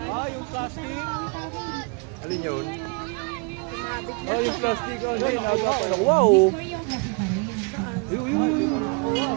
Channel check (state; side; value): quieter; left; 31.9 dB